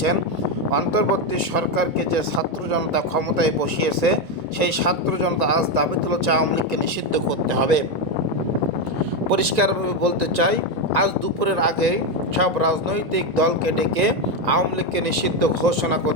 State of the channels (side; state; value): left; late; 1.9 ms